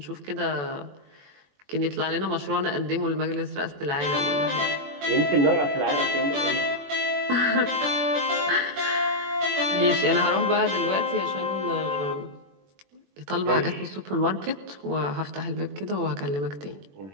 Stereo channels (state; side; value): late; left; 21 ms